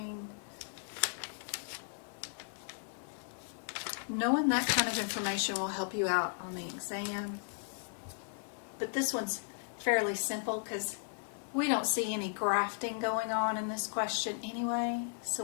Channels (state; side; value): silent; right; digital silence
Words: Knowing that kind of information will help you out on the exam. But this one's fairly simple because we don't see any grafting going on in this question anyway, so